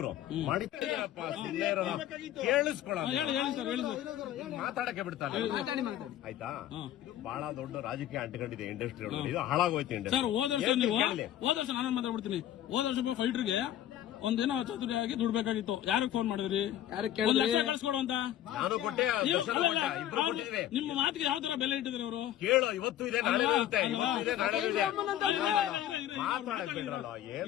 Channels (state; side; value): quieter; right; 11.9 dB